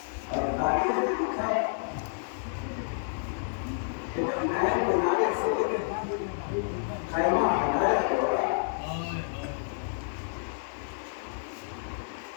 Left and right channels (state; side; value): silent; right; 58 dB below the other